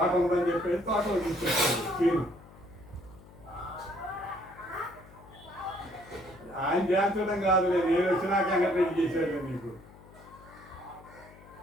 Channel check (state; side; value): noise; left; hum, 21 dB below the sound